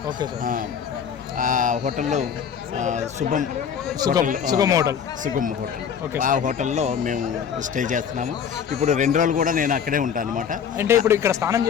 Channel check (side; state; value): right; quieter; 7.7 dB